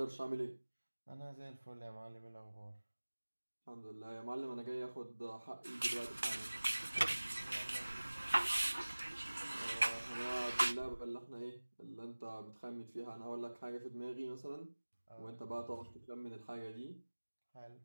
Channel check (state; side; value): inverted; both; correlation -1.00